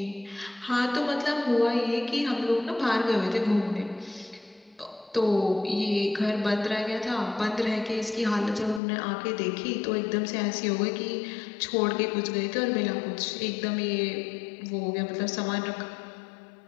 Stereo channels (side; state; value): right; drops out; at 8.8 s